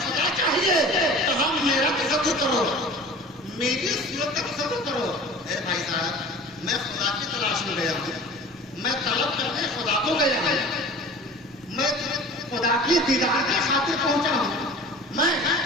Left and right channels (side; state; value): both; normal; correlation 0.41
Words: खुदा चाहिए, तो हम मेरा तसव्वुर करो, मेरी सूरत का तसव्वुर करो। भाई साहब, मैं खुदा की तलाश में गया हूँ, मैं तलब करने खुदा को गया हूँ, मैं खुदा की दीदार के खातिर पहुंचा हूँ, मैं